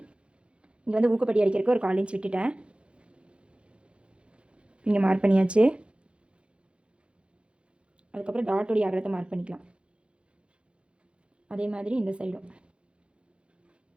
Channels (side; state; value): left; late; 0.058 ms